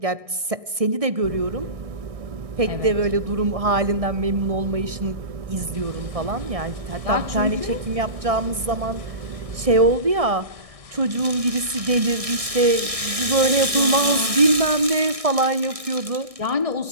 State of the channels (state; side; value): late; left; 1.6 ms